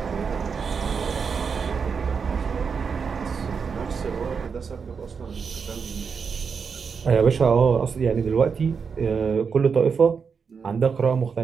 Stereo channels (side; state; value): left; quieter; 5.9 dB